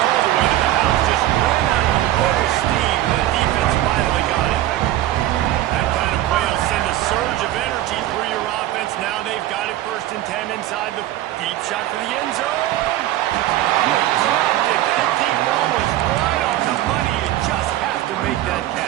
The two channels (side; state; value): left; quieter; 14.1 dB